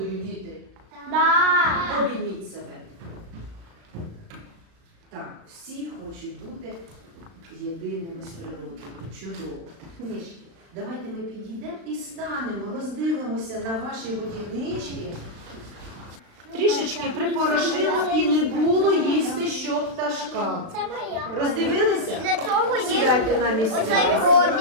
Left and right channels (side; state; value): left; late; 36 ms